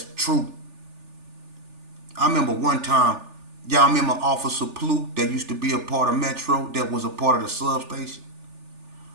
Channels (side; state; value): left; late; 3.4 ms